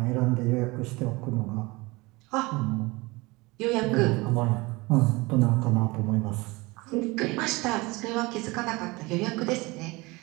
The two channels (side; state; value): left; quieter; 23.5 dB